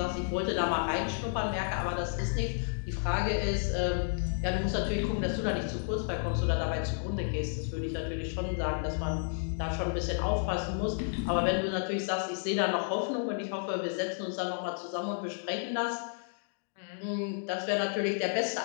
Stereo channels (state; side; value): silent; right; digital silence